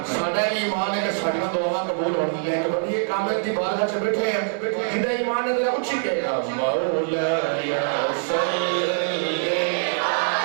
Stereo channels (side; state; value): left; silent; digital silence